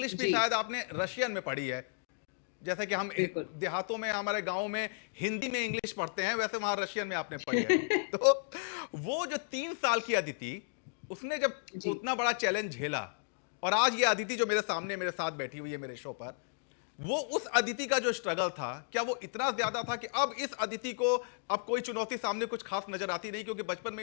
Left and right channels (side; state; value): right; silent; digital silence